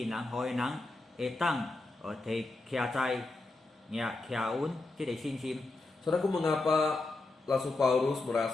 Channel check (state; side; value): quieter; right; 3.1 dB